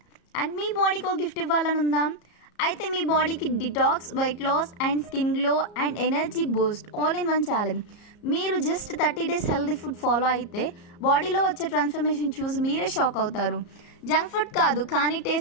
And మీ బాడీకి ఒక gift ఇవ్వాలని ఉందా? అయితే మీ బాడీకి detox, weight loss and skin glow and energy boost all in one challenge. మీరు just 30 days healthy food follow అయితే బాడీలో వచ్చే ట్రాన్స్ఫర్మేషన్ చూసి మీరే షాక్ అవుతారు. జంక్ ఫుడ్ కాదు కానీ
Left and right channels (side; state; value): right; late; 34 ms